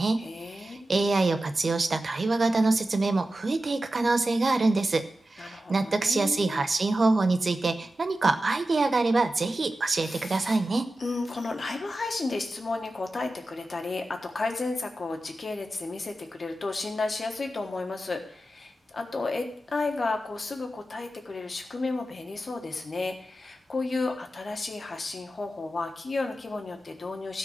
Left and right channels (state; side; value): normal; both; correlation 0.93